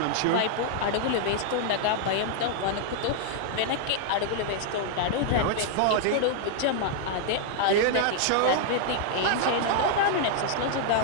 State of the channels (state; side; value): different; both; correlation -0.01